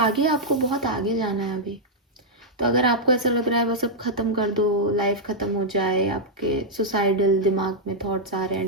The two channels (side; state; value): both; normal; correlation -0.05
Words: आपको बहुत आगे जाना है अभी। तो अगर आपको ऐसा लग रहा है बस अब ख़त्म कर दो, लाइफ ख़त्म हो जाए, आपके सुसाइडल दिमाग में थॉट्स आ रहे हैं,